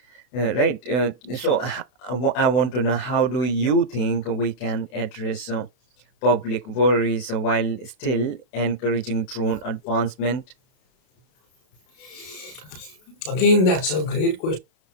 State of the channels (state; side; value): late; right; 32 ms